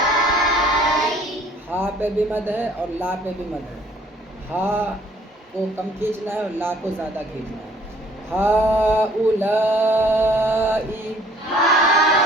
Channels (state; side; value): normal; both; correlation 0.58